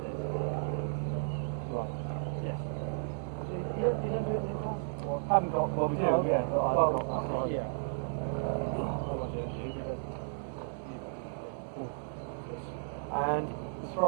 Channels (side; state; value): left; silent; digital silence